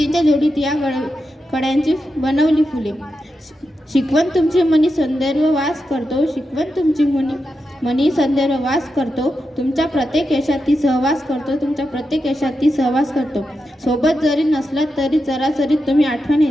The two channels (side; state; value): both; normal; correlation 0.88